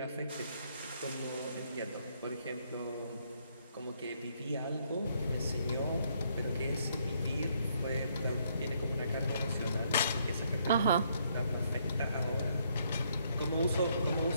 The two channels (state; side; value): inverted; both; correlation -0.71